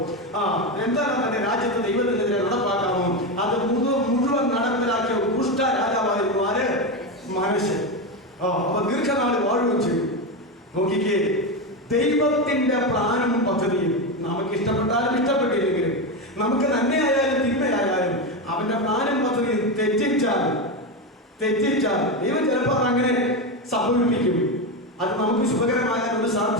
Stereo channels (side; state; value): both; normal; correlation 0.14